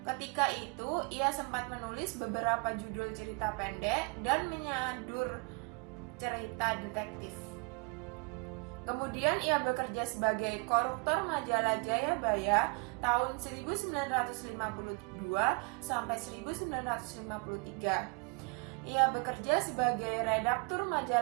Ketika itu, ia sempat menulis beberapa judul cerita pendek dan menyadur cerita detektif. Kemudian ia bekerja sebagai koruptor majalah Jayabaya tahun 1952 sampai 1953. Ia bekerja sebagai redaktur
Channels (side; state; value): left; quieter; 34.3 dB